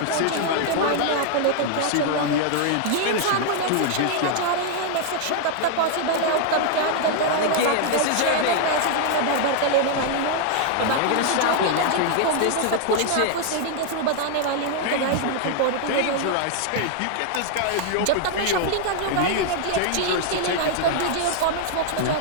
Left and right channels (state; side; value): different; both; correlation -0.01